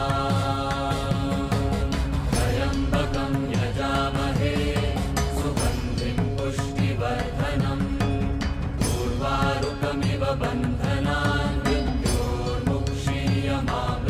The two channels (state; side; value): identical; both; correlation 1.00